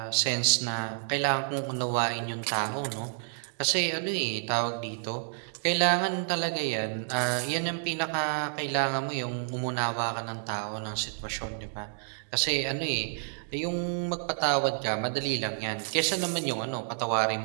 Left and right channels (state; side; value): silent; left; digital silence